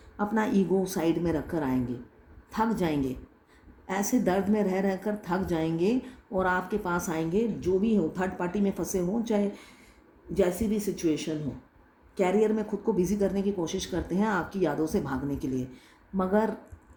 अपना ईगो साइड में रखकर आएंगे, थक जाएंगे, ऐसे दर्द में रह रहकर थक जाएंगे और आपके पास आएंगे। जो भी हो, थर्ड पार्टी में फंसे हों, चाहे जैसी भी सिचुएशन हो, कैरियर में खुद को बिजी करने की कोशिश करते हैं आपकी यादों से भागने के लिए, मगर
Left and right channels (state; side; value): identical; both; correlation 1.00